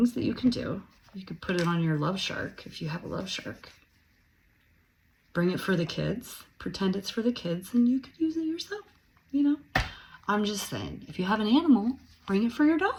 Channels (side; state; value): both; identical; correlation 1.00